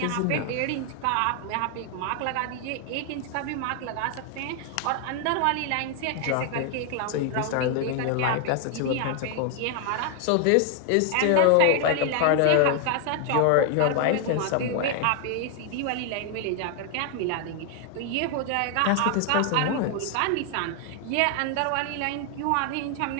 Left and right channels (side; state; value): both; different; correlation 0.00